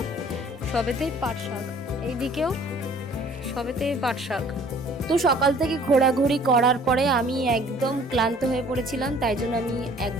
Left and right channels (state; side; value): normal; both; correlation 0.54